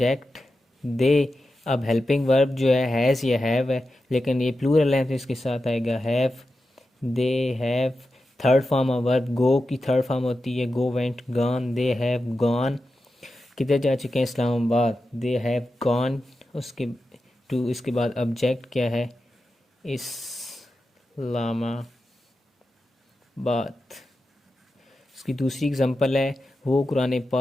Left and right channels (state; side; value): normal; both; correlation 0.91